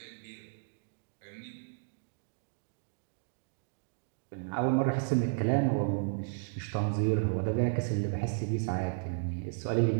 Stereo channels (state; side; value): silent; left; digital silence